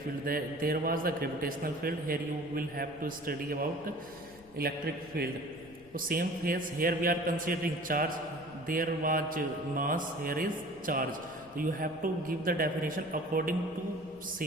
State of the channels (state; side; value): noise; left; rumble, 24 dB below the sound